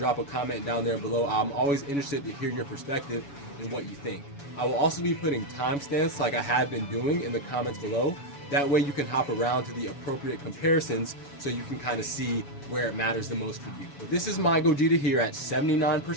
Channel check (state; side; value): late; right; 7.1 ms